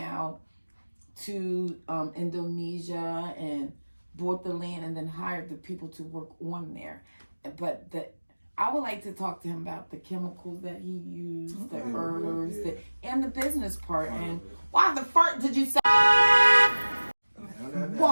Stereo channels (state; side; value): inverted; both; correlation -1.00